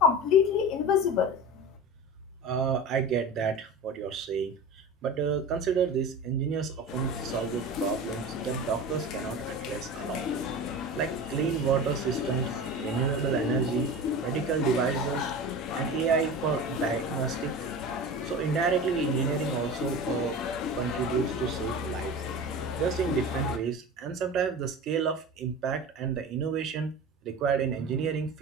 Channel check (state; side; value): normal; both; correlation 0.31